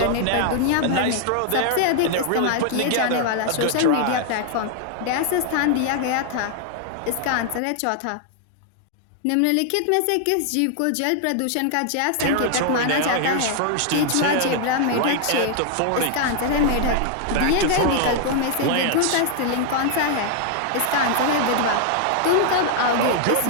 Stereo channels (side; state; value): both; different; correlation 0.00